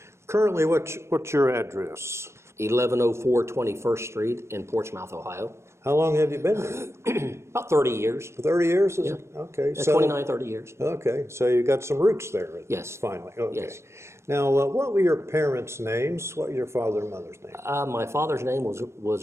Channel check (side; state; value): left; late; 0.13 ms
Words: Currently, what's your address? 1104 21st Street in Portsmouth, Ohio. How long have you been there? About 30 years. 30 years? Is Yeah. it? Okay. 29, 30 years. Okay, so you got some roots there. Yes. Finally. Okay. Yes. Now, what were your parents' names? What were your father and mother's names? My father's name